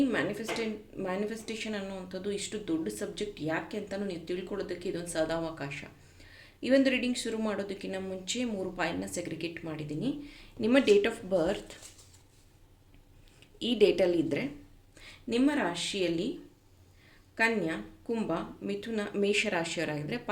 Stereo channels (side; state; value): both; identical; correlation 1.00